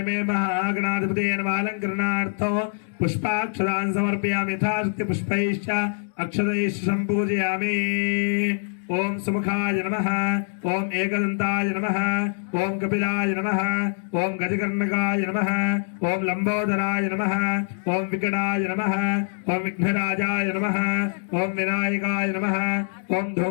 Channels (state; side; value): silent; right; 62 dB below the other